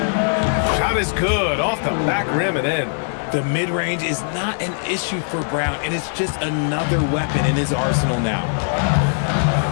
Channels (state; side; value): silent; right; digital silence